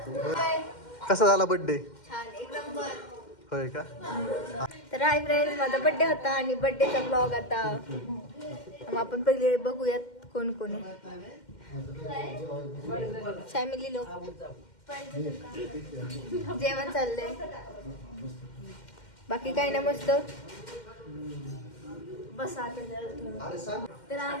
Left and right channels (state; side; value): late; right; 2.1 ms